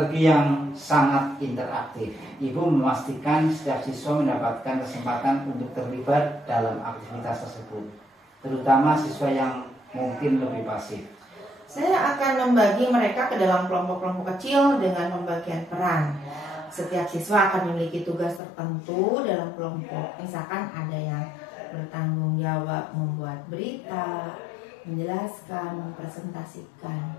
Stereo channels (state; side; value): drops out; right; at 18.4 s